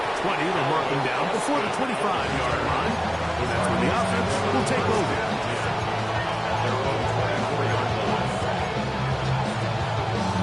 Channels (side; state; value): both; identical; correlation 1.00